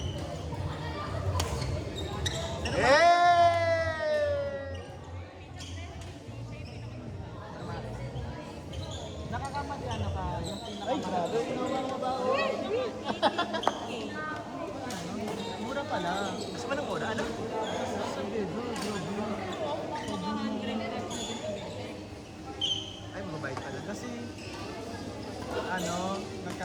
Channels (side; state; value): both; identical; correlation 1.00